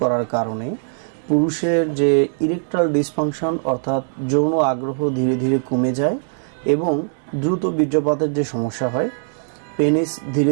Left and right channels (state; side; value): silent; left; digital silence